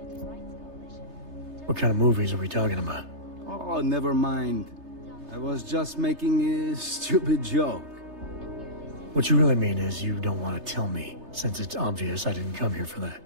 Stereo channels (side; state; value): left; late; 3.3 ms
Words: What kind of movies are we talking about? Oh, never mind. I was just making a stupid joke. What you really mean is you don't want to tell me, since it's obvious I didn't come here for that.